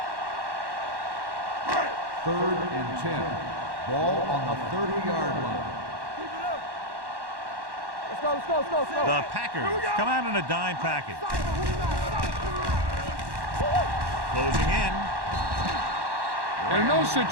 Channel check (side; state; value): left; late; 1.1 ms